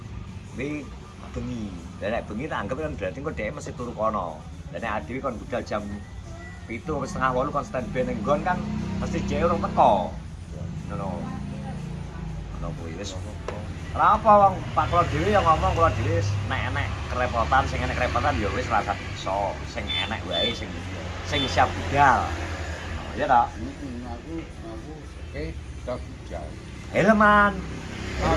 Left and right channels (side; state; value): both; identical; correlation 1.00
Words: Wi bengi. Lah nek bengi tak anggap kan berarti kok dhek mesti turu kono. Lah nek adewe kon budal jam 7 atau setengah 8 kon standby ning nggon kan mesti dhek urung teko. Ngono. Ngono kuwi wis. Ora apa wong Pak Kula dhewe yang ngomong kula dhewe nek enek kerepotan sing enek kerepotan ya wis rasa iso sing enek wae sing siap budal. Ya ta? Aku oke udah budal. Helman.